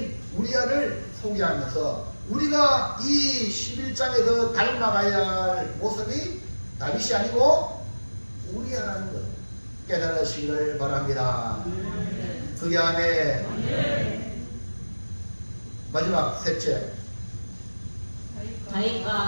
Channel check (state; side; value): inverted; both; correlation -1.00